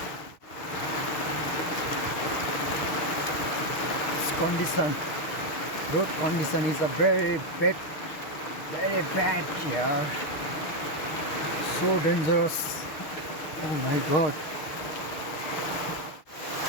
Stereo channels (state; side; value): late; right; 6.3 ms